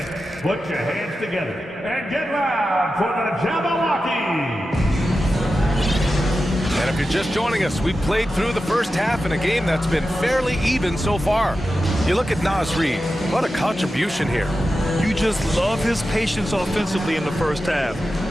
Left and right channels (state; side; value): normal; both; correlation 0.92